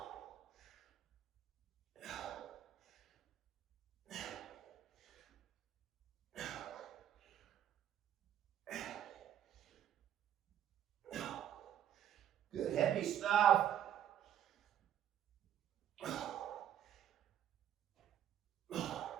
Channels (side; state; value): left; quieter; 10.5 dB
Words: Good heavy stuff.